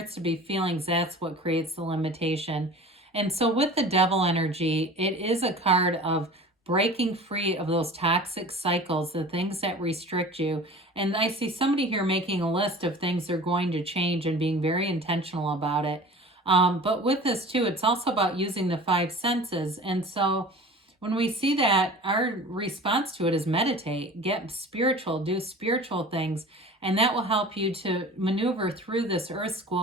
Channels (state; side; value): normal; both; correlation 0.40